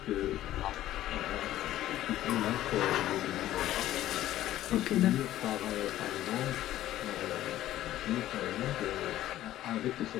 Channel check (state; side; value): quieter; right; 13.7 dB